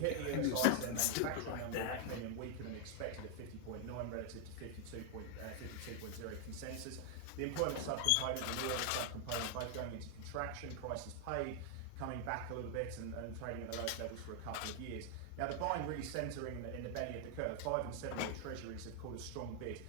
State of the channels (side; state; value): both; different; correlation 0.00